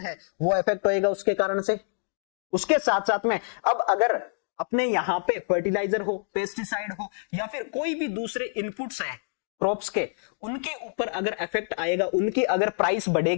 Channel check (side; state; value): right; silent; digital silence